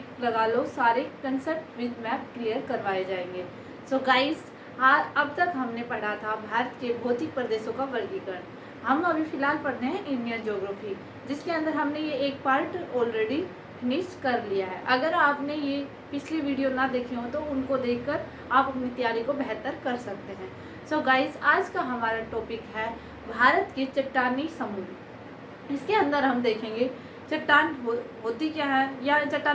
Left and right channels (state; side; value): identical; both; correlation 1.00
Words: लगा लो, सारे कंसेप्ट विद मैप क्लियर करवाए जाएंगे। सो गाइस, अब तक हमने पढ़ा था भारत के भौतिक प्रदेशों का वर्गीकरण। हम अभी फ़िलहाल पढ़ रहे हैं इंडियन ज्योग्राफी, जिसके अंदर हमने ये एक पार्ट ऑलरेडी फिनिश कर लिया है। अगर आपने ये पिछली वीडियो ना देखी हो तो उनको देखकर आप अपनी तैयारी को बेहतर कर सकते हैं। सो गाइस, आज का हमारा टॉपिक है भारत के चट्टानी समूह। इसके अंदर हम देखेंगे चट्टान होती क्या है, या